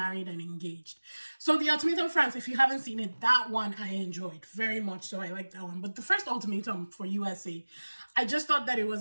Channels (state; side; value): inverted; both; correlation -1.00